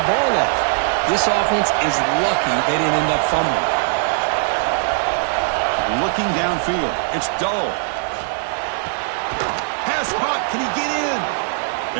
ball off. This offense is lucky they didn't end up fumbling. Looking downfield. It's dull. Pass caught. Can he get in?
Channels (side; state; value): left; silent; digital silence